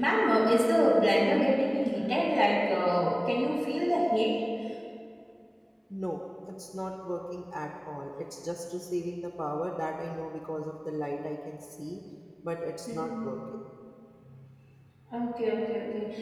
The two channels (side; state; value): both; identical; correlation 1.00